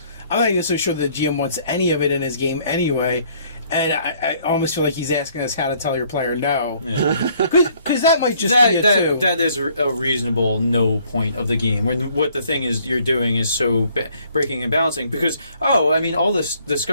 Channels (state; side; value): inverted; both; correlation -0.62